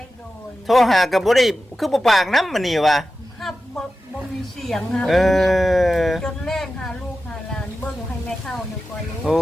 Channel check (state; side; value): normal; both; correlation 0.93